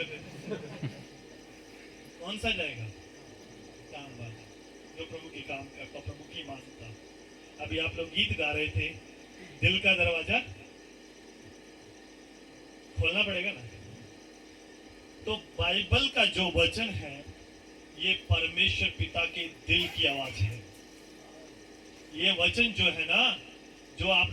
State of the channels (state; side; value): identical; both; correlation 1.00